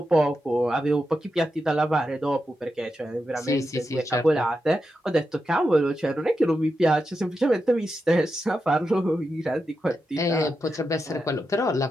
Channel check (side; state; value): both; normal; correlation 0.88